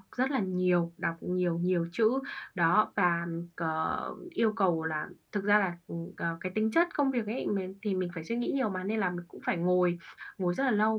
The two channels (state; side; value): identical; both; correlation 1.00